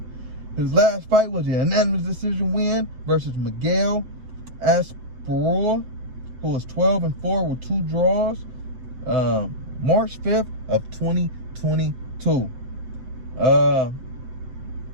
His last fight was a unanimous decision win versus Miguel Asprilla, who was 12-4 with 2 draws. March 5th of 2022.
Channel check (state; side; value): late; left; 7.9 ms